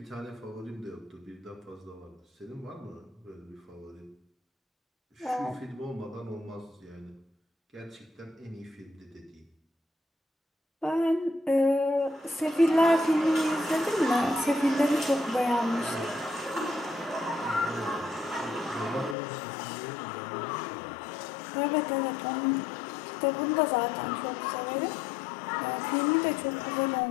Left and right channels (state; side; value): drops out; right; at 19.2 s